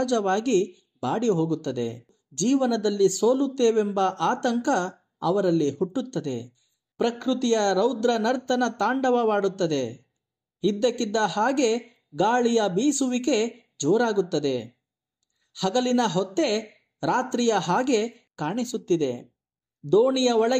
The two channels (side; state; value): both; identical; correlation 1.00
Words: ಬಾಡಿ ಹೋಗುತ್ತದೆ. ಜೀವನದಲ್ಲಿ ಸೋಲುತ್ತೇವೆಂಬ ಆತಂಕ ಅವರಲ್ಲಿ ಹುಟ್ಟುತ್ತದೆ. ಪ್ರಕೃತಿಯ ರೌದ್ರ ನರ್ತನ ತಾಂಡವವಾಡುತ್ತದೆ. ಇದ್ದಕ್ಕಿದ್ದ ಹಾಗೆ ಗಾಳಿಯ ಬೀಸುವಿಕೆ ಜೋರಾಗುತ್ತದೆ. ಹಗಲಿನ ಹೊತ್ತೆ ರಾತ್ರಿಯ ಹಾಗೆ ಕಾಣಿಸುತ್ತಿದೆ. ದೋಣಿಯ